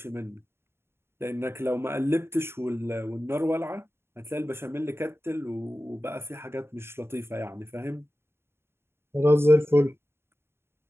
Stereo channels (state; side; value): late; left; 0.12 ms